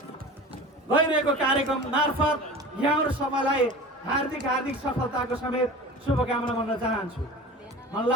गइरहेको कार्यक्रम मार्फत यहाँहरू सबैलाई हार्दिक हार्दिक सफलताको समेत शुभकामना भन्न चाहन्छु। मलाई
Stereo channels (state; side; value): normal; both; correlation 0.36